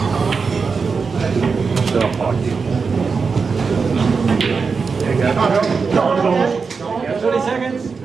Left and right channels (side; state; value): left; quieter; 5.1 dB